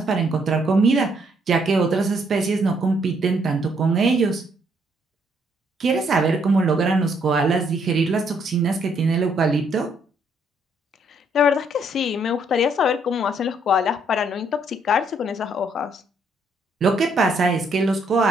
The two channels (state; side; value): normal; both; correlation 0.70